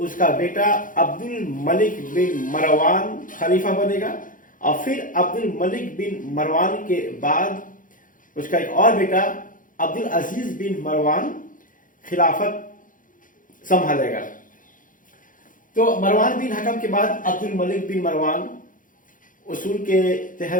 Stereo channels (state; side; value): late; right; 0.39 ms